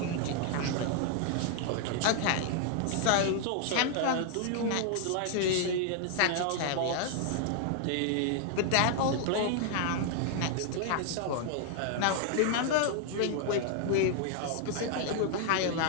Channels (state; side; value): different; both; correlation 0.00